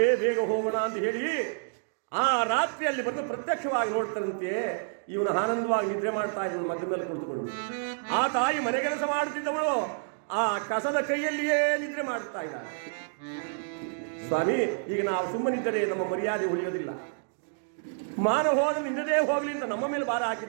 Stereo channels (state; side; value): silent; left; digital silence